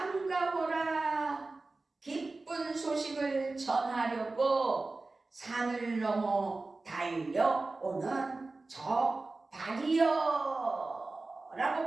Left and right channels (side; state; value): left; quieter; 3.4 dB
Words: 기쁜 소식을 전하려고 산을 넘어 달려오는 저 발이여 라고